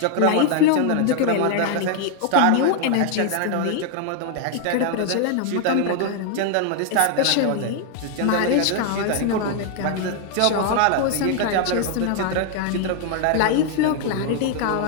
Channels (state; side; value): different; both; correlation 0.00